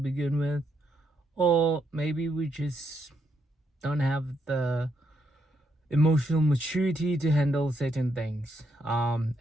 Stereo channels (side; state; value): both; normal; correlation 0.77